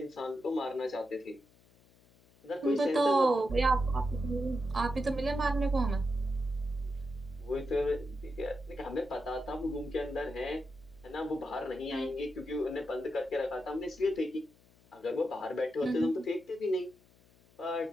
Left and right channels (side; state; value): left; noise; hum, 29 dB below the sound